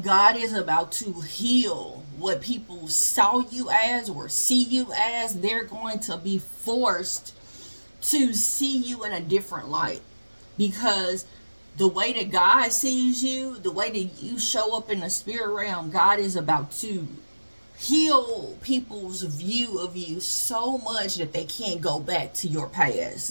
God is about to heal what people saw you as or see you as. They're going to be forced to see you in a different light, because the way that God sees you, the way that you show up in the spirit realm, God is about to heal people's view of you so much that they can't go back to your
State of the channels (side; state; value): both; inverted; correlation -1.00